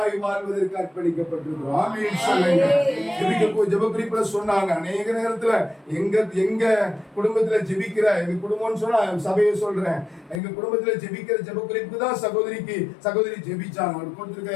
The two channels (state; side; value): drops out; right; at 10.4 s